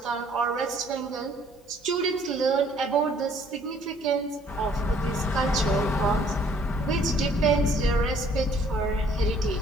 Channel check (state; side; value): normal; both; correlation 0.60